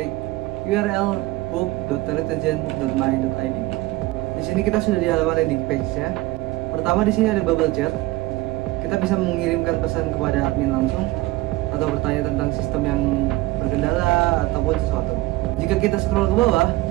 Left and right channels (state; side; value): quieter; left; 18.7 dB